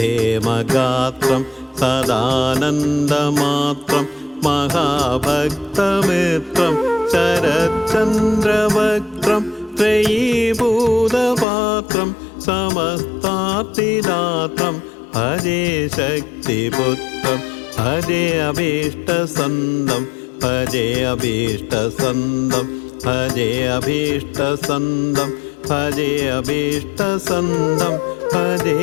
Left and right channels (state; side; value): drops out; right; at 11.5 s